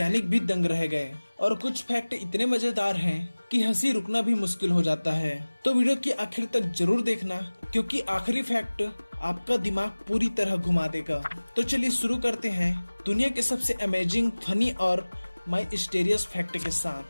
भी दंग रह गए, और कुछ फैक्ट इतने मजेदार हैं कि हंसी रुकना भी मुश्किल हो जाता है। तो वीडियो की आखिर तक जरूर देखना, क्योंकि आखिरी फैक्ट आपका दिमाग पूरी तरह घुमा देगा। तो चलिए शुरू करते हैं दुनिया के सबसे अमेजिंग, फनी और माइस्टीरियस फैक्ट के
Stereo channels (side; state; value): both; inverted; correlation -1.00